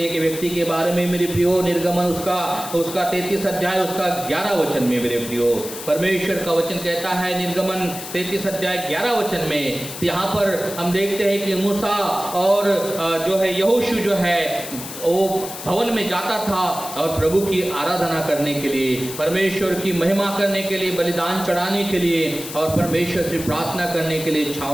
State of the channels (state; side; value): noise; left; hiss, 10 dB below the sound